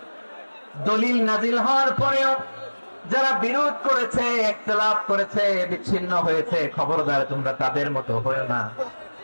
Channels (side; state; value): both; inverted; correlation -1.00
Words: দলিল নাজিল হওয়ার পরেও যারা বিরোধ করেছে, ইখতিলাফ করেছে, বিচ্ছিন্ন হয়েছে, খবরদার তোমরা তাদের মতো হয়ো না।